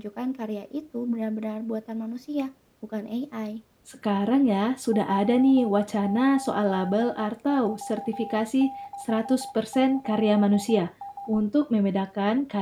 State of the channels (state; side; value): identical; both; correlation 1.00